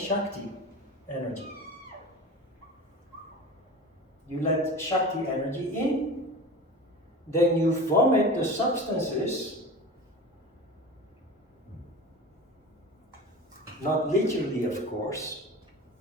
energy. You let Shakti energy in, then you vomit the substances, not literally of course.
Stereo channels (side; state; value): both; normal; correlation 0.34